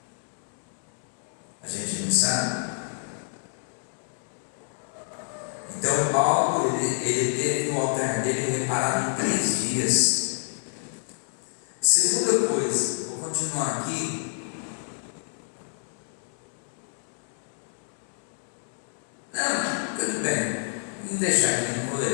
A gente não sabe. Então Paulo, ele teve o altar dele reparado em 3 dias. Segunda coisa, vou continuar aqui. Não, tudo bem. Vou deixar aqui, não vou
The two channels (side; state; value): right; silent; 60 dB below the other